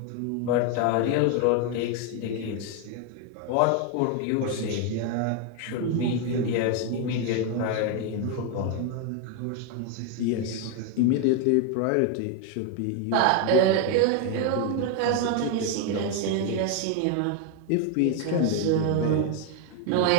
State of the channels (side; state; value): both; different; correlation 0.01